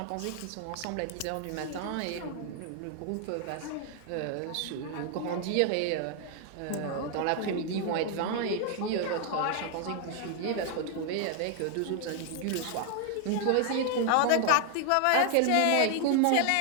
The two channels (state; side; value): different; both; correlation 0.00